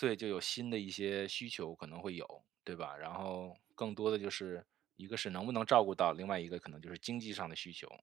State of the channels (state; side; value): quieter; left; 12.3 dB